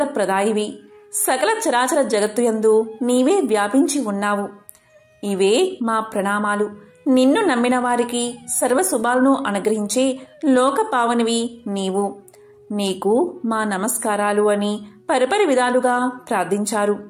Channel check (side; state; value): both; identical; correlation 1.00